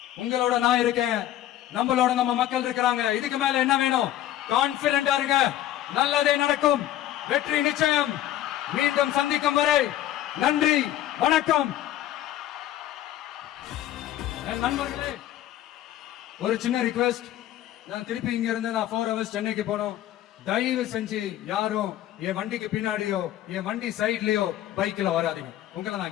உங்களோட நான் இருக்கேன், நம்மளோட நம்ம மக்கள் இருக்கிறாங்க. இதுக்கு மேல என்ன வேணும்? கான்பிடென்டா இருங்க, நல்லதே நடக்கும், வெற்றி நிச்சயம். மீண்டும் சந்திக்கும் வரை நன்றி, வணக்கம். நண்பர்களே, ஒரு சின்ன ரிக்வெஸ்ட். நான் திருப்பி இங்க இருந்து நான் 4 hours சென்னைக்கு போனோம். தயவு செஞ்சு யாரும் என் வண்டிக்கு பின்னாடியோ என் வண்டி சைட்லயோ பைக்ல வராதீங்க. உங்களை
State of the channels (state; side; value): quieter; right; 12.9 dB